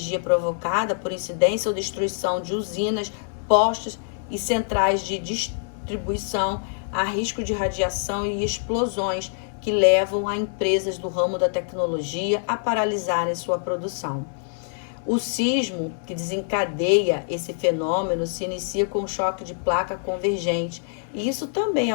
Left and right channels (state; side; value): silent; right; digital silence